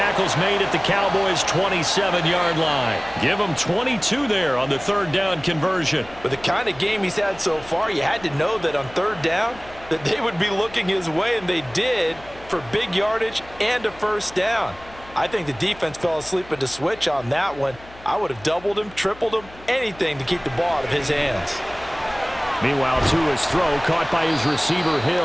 made at the Cowboys' 27-yard line. Give him 22 there on the 3rd down conversion. With the kind of game he's had so far, you had to know that on 3rd down that they would be looking his way, and they did, for big yardage and a first down. I think the defense fell asleep at the switch on that one. I would have doubled him, tripled him, anything to keep the ball out of his hands. Meanwhile, Tua's throw caught by his receiver,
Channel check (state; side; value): noise; left; hum, 21 dB below the sound